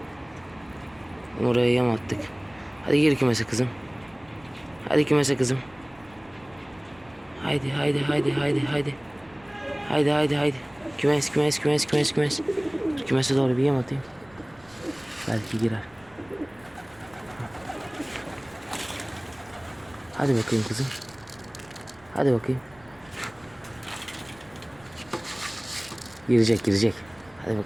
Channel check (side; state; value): right; noise; rumble, 27 dB below the sound